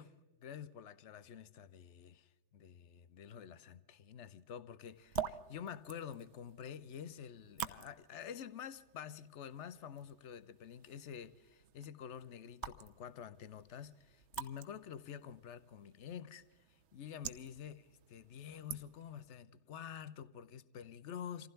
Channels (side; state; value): right; late; 3.4 ms